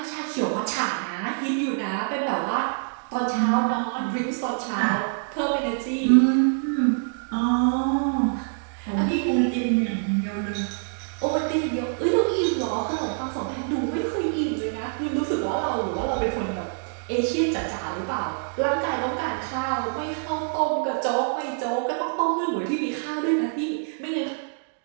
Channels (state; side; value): silent; left; digital silence